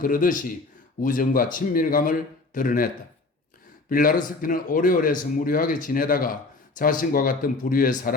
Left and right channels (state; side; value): quieter; right; 3.5 dB